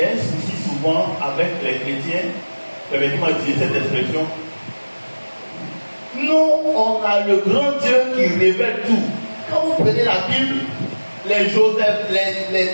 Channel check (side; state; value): both; inverted; correlation -1.00